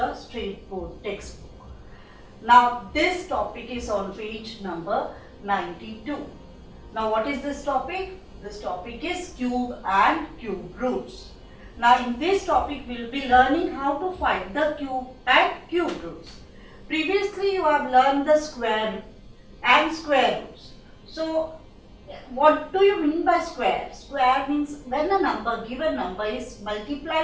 State Board textbook. Now this topic is on page number 92. Now what is this topic? This topic is cube and cube roots. Now in this topic we will be learning how to find the cube and cube roots. Previously you have learned the square and square roots. So what do you mean by square? Square means when a given number is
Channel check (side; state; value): both; identical; correlation 1.00